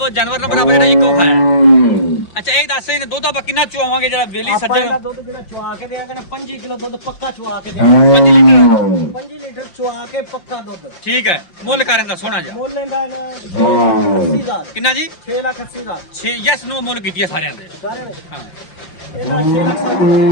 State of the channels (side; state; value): right; late; 5.8 ms